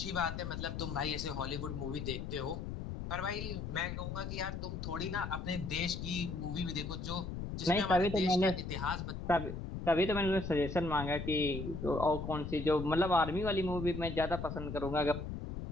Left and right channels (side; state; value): left; noise; rumble, 6 dB below the sound